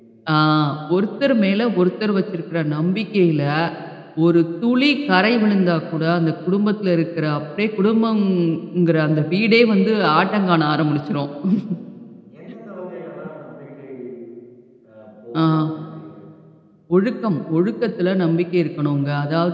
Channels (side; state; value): both; identical; correlation 1.00